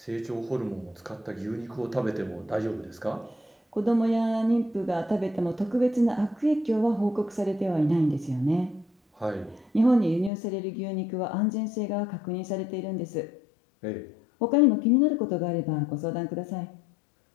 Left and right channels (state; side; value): drops out; right; at 10.3 s